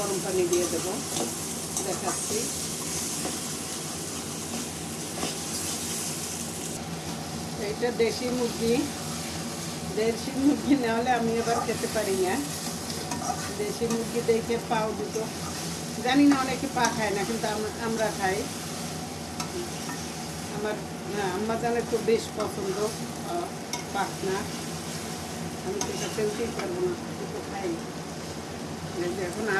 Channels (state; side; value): identical; both; correlation 1.00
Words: পানি দিয়ে দেবো, দেখাচ্ছি। এইটা দেশি মুরগি না হলে আমি এবার খেতে পারি না। দেশি মুরগি দেখে পাও দুটো, জানি না অনেকে পা খায় না, কিন্তু আমরা খাই। আমার আম্মা জানের তো বেশ পছন্দ পাখনা, আমি তো এটা ফেলতেই পারবো না, তো খাই। এখন